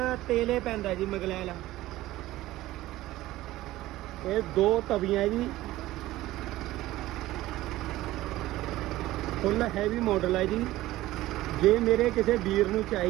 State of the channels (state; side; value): quieter; left; 16.4 dB